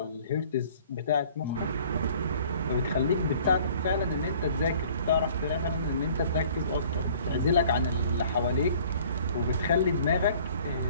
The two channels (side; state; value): both; inverted; correlation -0.53